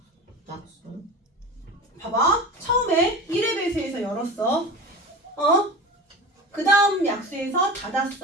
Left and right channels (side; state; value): both; normal; correlation 0.31